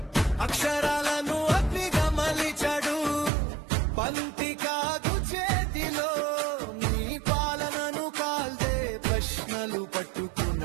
అక్షరాలను అగ్నిగా మలిచాడు పంతి కాదు చేతిలో నీ పాలనను కాల్దే ప్రశ్నలు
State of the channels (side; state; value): left; drops out; at 3.3 s